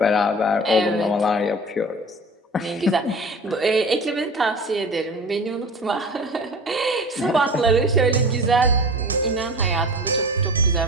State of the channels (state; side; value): normal; both; correlation 0.37